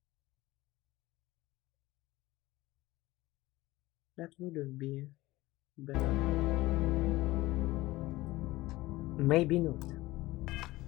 That wouldn't be better. Maybe not.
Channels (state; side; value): quieter; right; 18.7 dB